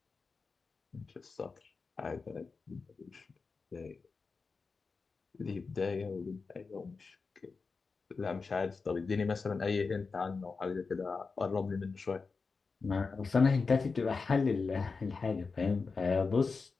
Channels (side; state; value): right; quieter; 4.5 dB